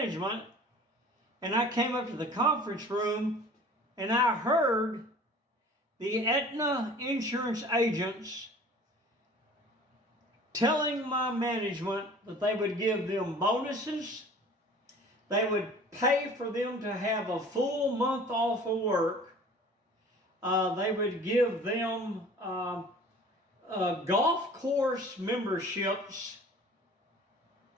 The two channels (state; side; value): normal; both; correlation 0.46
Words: and I came up to the conference room and I heard the Aetna insurance agents telling my management that they would give them bonuses, they would pay for them to have a full month off of work, they would give them golf course memberships